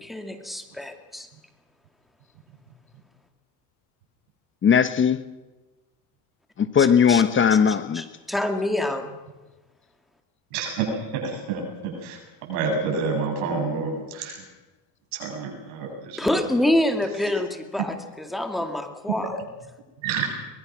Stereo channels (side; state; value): right; quieter; 3.1 dB